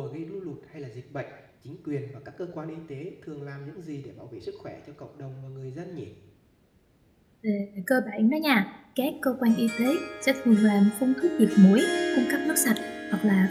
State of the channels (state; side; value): identical; both; correlation 1.00